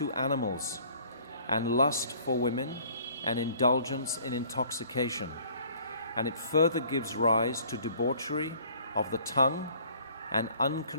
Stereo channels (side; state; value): both; inverted; correlation -0.55